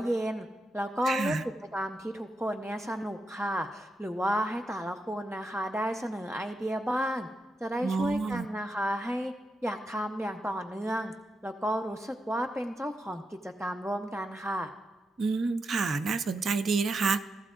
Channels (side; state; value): both; normal; correlation 0.86